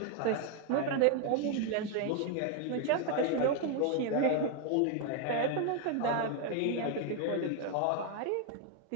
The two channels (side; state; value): both; different; correlation 0.00